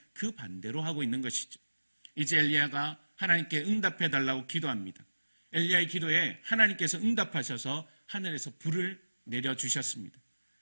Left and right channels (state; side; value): inverted; both; correlation -1.00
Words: 그 반대로 하고 있는 것이죠. 이제 엘리야가 하나님께 응답해달라고 기도합니다. 엘리야의 기도에 하나님께서 응답하셔서 하늘에서 불을 내려주셨습니다.